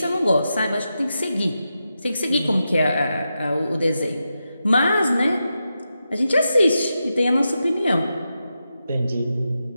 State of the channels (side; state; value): both; inverted; correlation -0.88